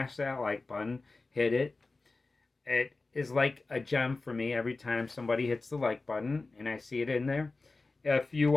that like button, hit it. It is like a gem for me every time somebody hits the like button and I see it in there. If you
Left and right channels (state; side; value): quieter; right; 3.6 dB